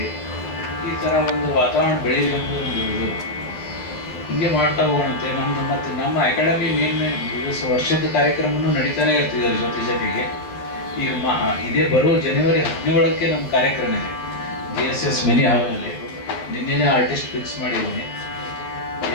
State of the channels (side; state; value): right; late; 11 ms